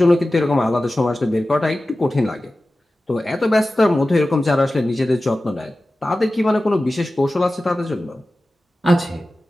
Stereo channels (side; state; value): both; normal; correlation 0.95